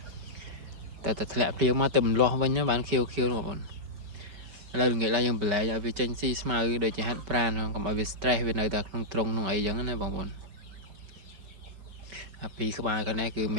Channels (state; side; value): late; left; 5.2 ms